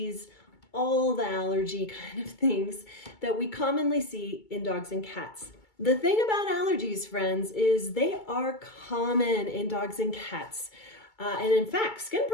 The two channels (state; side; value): late; right; 2.3 ms